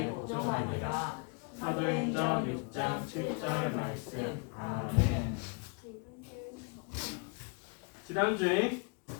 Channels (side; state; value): right; quieter; 34.5 dB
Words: 복종하니라. 사도행전 6장 7절 말씀. 아멘. 지난주에